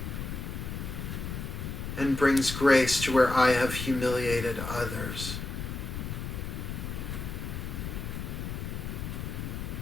and brings grace to where I have humiliated others.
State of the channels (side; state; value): left; noise; rumble, 5 dB below the sound